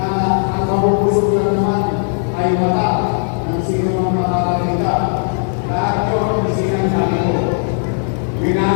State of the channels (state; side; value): silent; right; 63 dB below the other